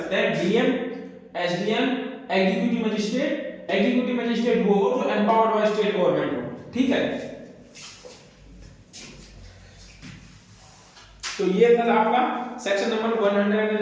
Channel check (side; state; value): both; identical; correlation 1.00